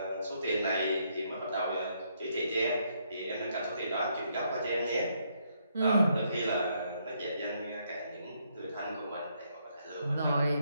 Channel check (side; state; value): both; inverted; correlation -0.74